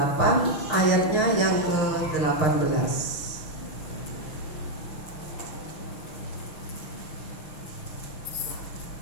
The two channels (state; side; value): late; right; 6.5 ms